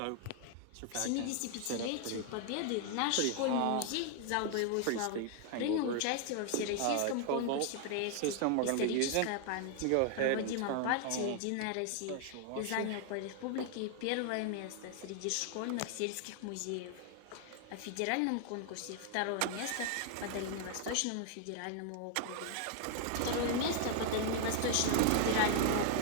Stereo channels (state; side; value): different; both; correlation 0.00